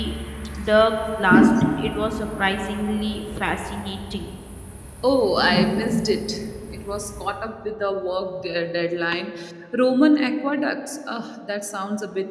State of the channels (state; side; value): identical; both; correlation 1.00